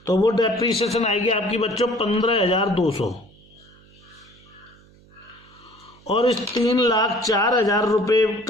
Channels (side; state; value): right; noise; hum, 27 dB below the sound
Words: तो वो डेप्रीसिएशन आएगी आपकी बच्चों 15,200। और इस 3,04,000 रुपये